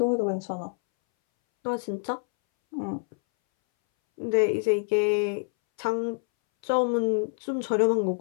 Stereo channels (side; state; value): right; silent; 61 dB below the other